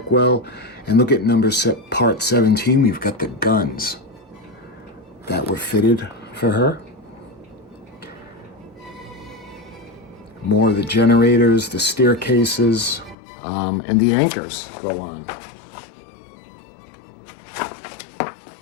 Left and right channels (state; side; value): drops out; right; at 13.2 s